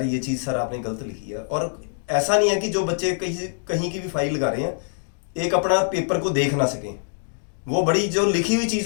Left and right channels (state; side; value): silent; right; digital silence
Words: ये चीज़ सर आपने गलत लिखी है। और ऐसा नहीं है कि जो बच्चे कहीं की भी फाइल लगा रहे हैं एक अपना पेपर को देख ना सकें, वो बड़ी जो लिखी हुई